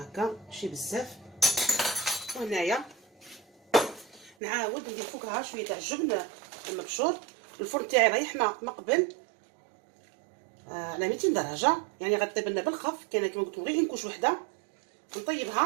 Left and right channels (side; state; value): left; drops out; at 4.4 s